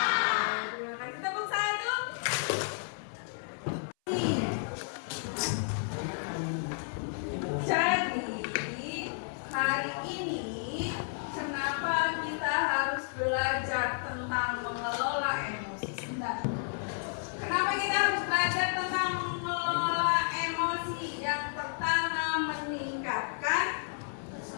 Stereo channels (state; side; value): silent; right; 56 dB below the other